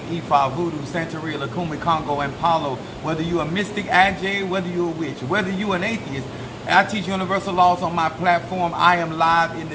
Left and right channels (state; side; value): identical; both; correlation 1.00